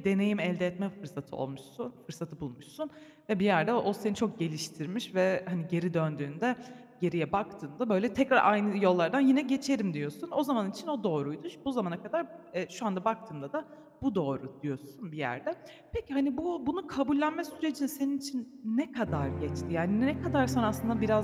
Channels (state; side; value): identical; both; correlation 1.00